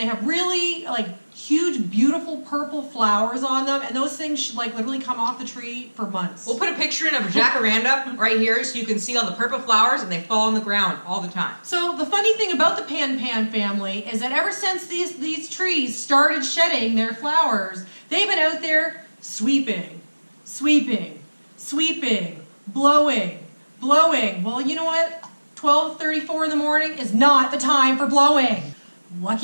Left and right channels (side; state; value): both; inverted; correlation -1.00